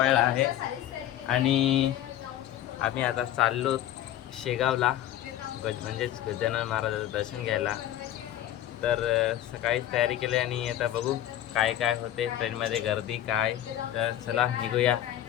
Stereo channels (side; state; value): right; quieter; 12.2 dB